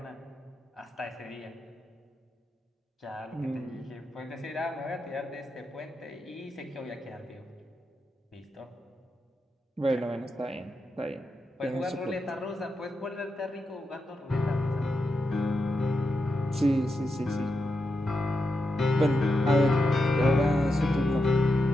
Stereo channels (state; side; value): normal; both; correlation 0.87